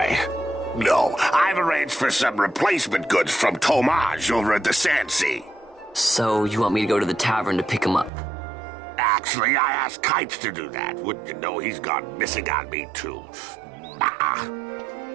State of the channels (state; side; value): drops out; left; at 8.1 s